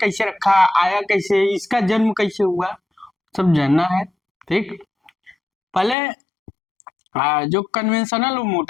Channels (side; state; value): right; drops out; at 6.0 s